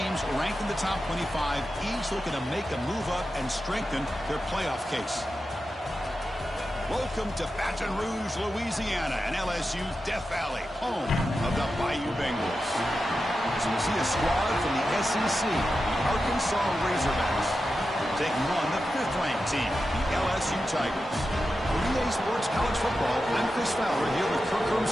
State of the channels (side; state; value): both; normal; correlation 0.91